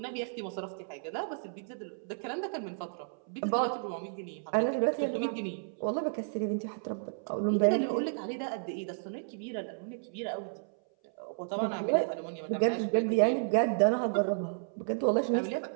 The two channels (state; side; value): silent; left; 56 dB below the other